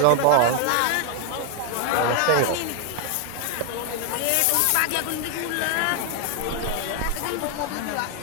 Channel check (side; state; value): both; different; correlation 0.00